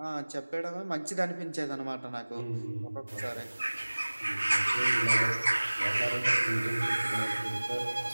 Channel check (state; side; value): inverted; both; correlation -1.00